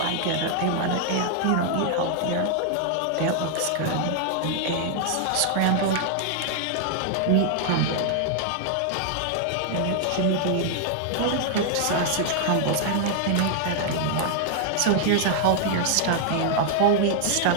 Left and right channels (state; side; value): different; both; correlation 0.00